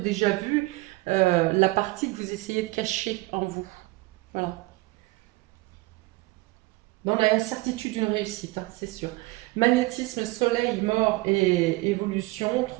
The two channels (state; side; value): quieter; left; 22.0 dB